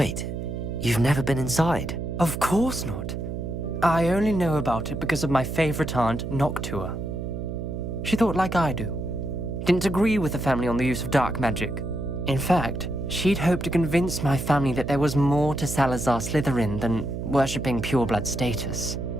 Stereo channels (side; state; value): right; noise; hum, 5 dB below the sound